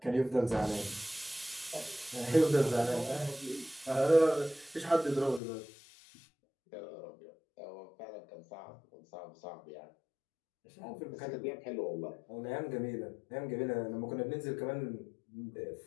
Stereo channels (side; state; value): right; drops out; at 5.4 s